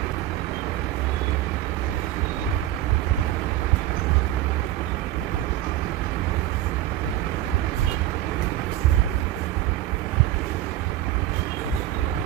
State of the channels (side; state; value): left; quieter; 13.7 dB